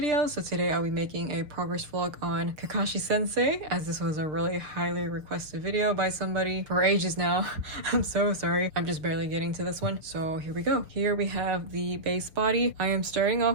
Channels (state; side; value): late; left; 6.5 ms